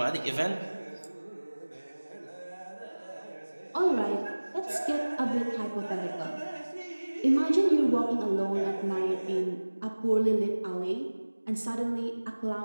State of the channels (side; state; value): both; inverted; correlation -1.00